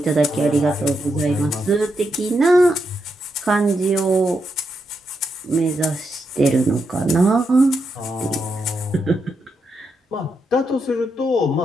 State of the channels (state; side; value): normal; both; correlation 0.83